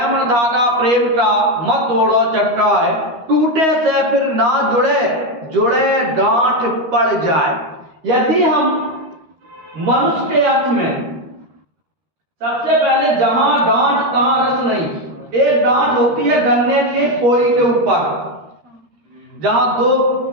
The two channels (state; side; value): late; left; 13 ms